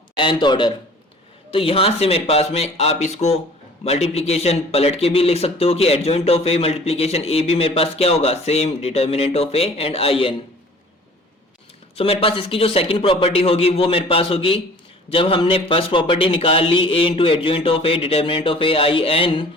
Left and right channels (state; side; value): normal; both; correlation 0.48